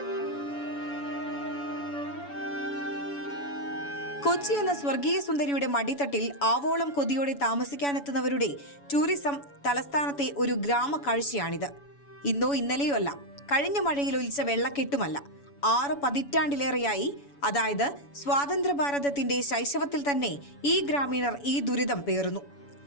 കൊച്ചി എന്ന സ്വർഗീയ സുന്ദരിയുടെ മടിത്തട്ടിൽ ആവോളം കൊതിയോടെ താമസിക്കാനെത്തുന്നവരുടെ ടൂറിസം തലസ്ഥാനത്തെ ഒരു ഗ്രാമ കാഴ്ചയാണിത്. ഇന്നോ ഇന്നലെയോ അല്ല, കഴിഞ്ഞ മഴയിൽ ഒലിച്ച വെള്ളക്കെട്ടുമല്ല, 6 പതിറ്റാണ്ടിലേറെയായി, അതായത് സ്വാതന്ത്ര്യ ഭാരതത്തിന്റെ ശൈശവത്തിൽ തന്നെ ഈ ഗ്രാമീണർ ഈ ദുരിതം പേറുന്നു.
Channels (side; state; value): right; late; 7.1 ms